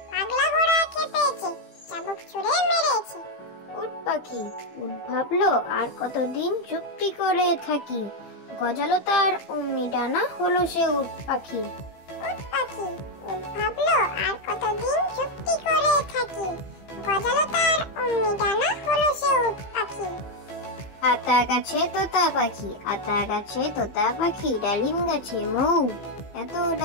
পাগলা ঘোড়া খেপেছে, চাবুক ছুঁড়ে মেরেছে। উট পাখি উট ভাবলো আর কতদিন চুপটি করে থাকি, গজালো তার অমনি ডানা হলো সে উট পাখি। উট পাখি উট ভাবলো আর কতদিন চুপটি করে থাকি, গজালো তার অমনি ডানা হলো সে উট পাখি। আতা গাছে তোতা পাখি, আতা গাছে তোতা পাখি, ডালিম গাছে মৌ, এত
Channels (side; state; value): right; late; 15 ms